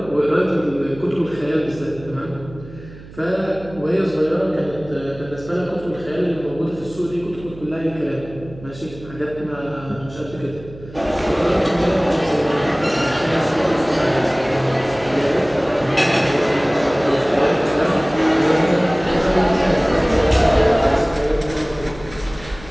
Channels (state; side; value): noise; right; hum, 17 dB below the sound